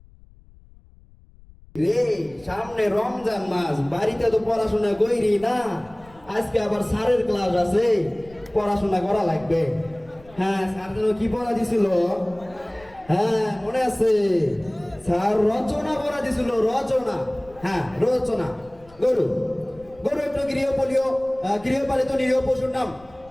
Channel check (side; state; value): left; noise; rumble, 24 dB below the sound